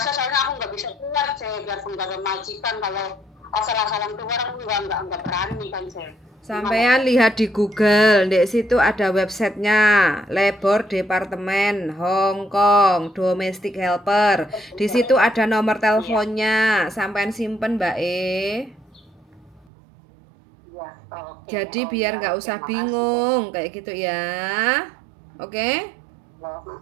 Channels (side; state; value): left; drops out; at 19.7 s